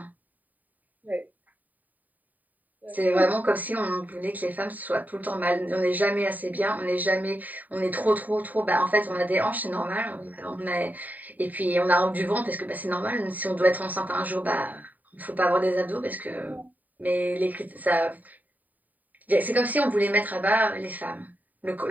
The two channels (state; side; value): late; left; 0.082 ms